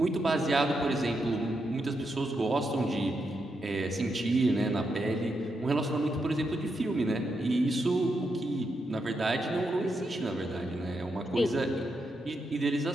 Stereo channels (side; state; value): both; normal; correlation 0.83